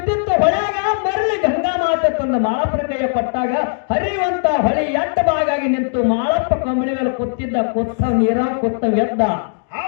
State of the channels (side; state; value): right; silent; digital silence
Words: ಹೊಳ್ಯಾಗ ಮರಳಿ ಗಂಗಾ ಮಾತೆ ತಂದ ಮಾಳಪ್ಪನ ಕೈಯ ಕೊಟ್ಟಾಗ ಹರಿಯುವಂತ ಹೊಳಿ ಎಟ್ಟ ಬಾಗಾಗಿ ನಿಂತು ಮಾಳಪ್ಪ ಕಂಬಳಿ ಮೇಲೆ ಕೂತಿದ್ದ ಕೊತ್ತ ನೀರ ಕೊತ್ತ ಎದ್ದ